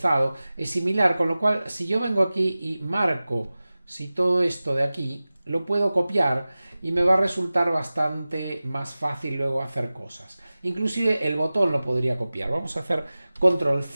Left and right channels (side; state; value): both; inverted; correlation -0.97